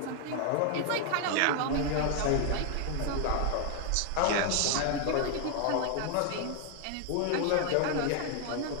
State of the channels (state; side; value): different; both; correlation 0.00